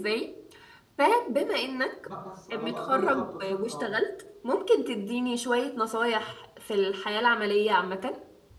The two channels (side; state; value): both; identical; correlation 1.00